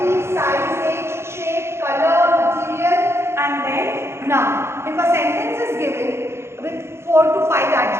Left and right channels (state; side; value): late; left; 0.12 ms